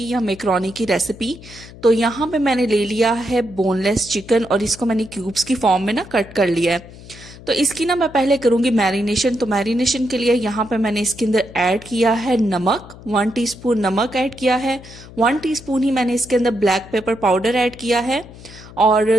या मैक्रोनी की रेसिपी। तो यहाँ पे मैंने ले लिया है बोनलेस चिकन और इसको मैंने क्यूब्स की फॉर्म में ना कट कर लिया है। तो इसकी ना मैं पहले करूंगी मैरिनेशन। तो मैरिनेशन के लिए यहाँ पे मैंने इसके अंदर ऐड किया है नमक, 1 टीस्पून नमक ऐड किया है। 1 टीस्पून ही मैंने इसके अंदर ब्लैक पेपर पाउडर ऐड किया है और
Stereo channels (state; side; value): noise; left; hum, 18 dB below the sound